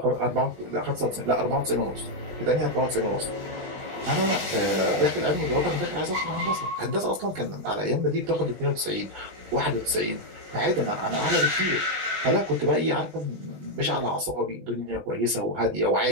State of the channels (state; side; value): late; left; 20 ms